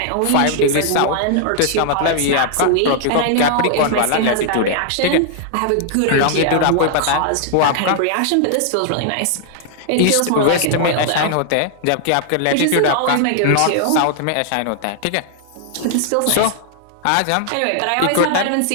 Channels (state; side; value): different; both; correlation -0.01